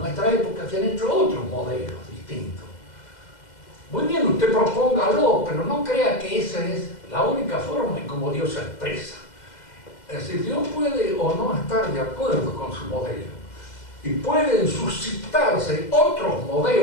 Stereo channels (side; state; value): right; late; 2.0 ms